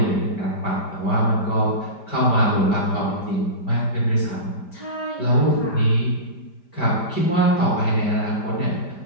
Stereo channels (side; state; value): right; late; 5.0 ms